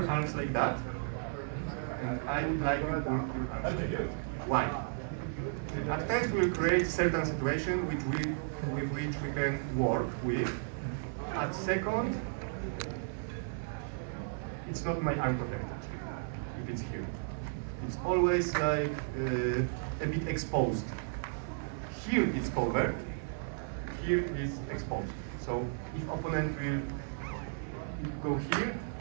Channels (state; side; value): silent; left; 55 dB below the other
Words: arms like that, and I would like to pull your arms like that. Why? At first, we'll create certain situation with which we can work with. At second, it's not my arm protected, if it's here. It's always like a bit exposed. Here it's covered, here is exposed. So if opponent will go here,